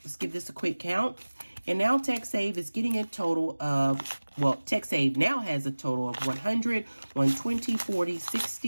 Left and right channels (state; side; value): inverted; both; correlation -1.00